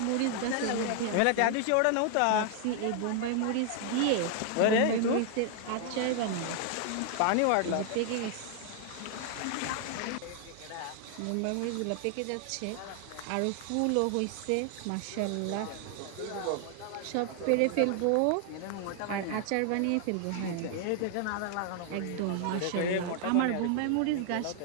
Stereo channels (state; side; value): different; both; correlation 0.00